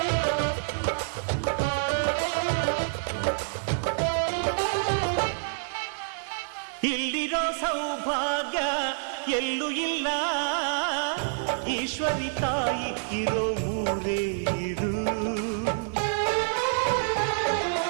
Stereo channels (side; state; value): left; silent; digital silence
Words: ಇಲ್ಲಿರೋ ಸೌಭಾಗ್ಯ ಎಲ್ಲೂ ಇಲ್ಲ, ಈಶ್ವರಿ ತಾಯಿ ಇರೋ ಊರೇ ಇದು.